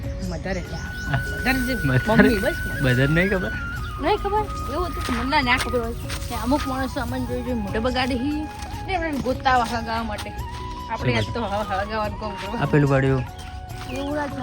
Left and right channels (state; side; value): identical; both; correlation 1.00